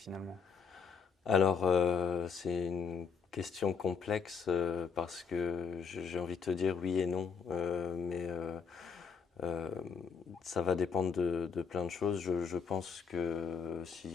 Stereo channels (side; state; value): right; quieter; 6.0 dB